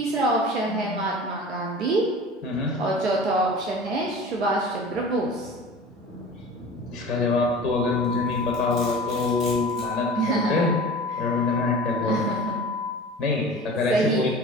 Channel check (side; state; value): both; normal; correlation 0.38